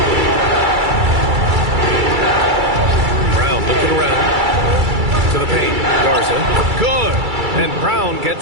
Looking around to the paint. Garza. Good. And Brown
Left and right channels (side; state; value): left; late; 2.3 ms